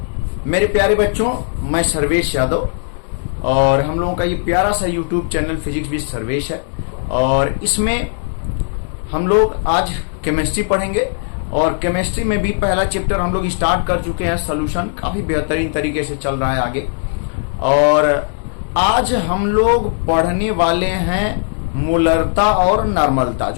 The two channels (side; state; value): right; silent; digital silence